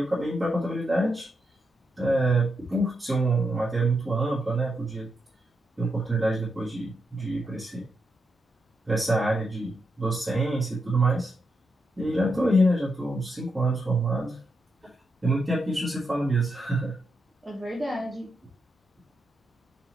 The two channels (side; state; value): both; normal; correlation 0.83